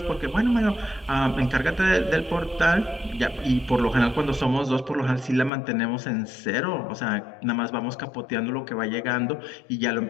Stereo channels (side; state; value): right; drops out; at 5.5 s